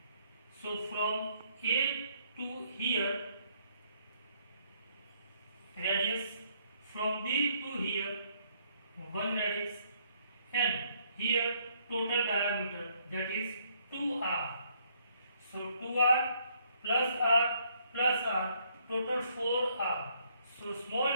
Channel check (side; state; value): both; inverted; correlation -0.68